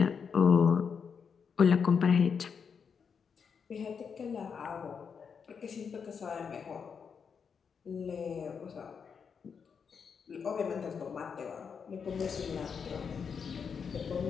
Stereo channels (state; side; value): quieter; right; 6.3 dB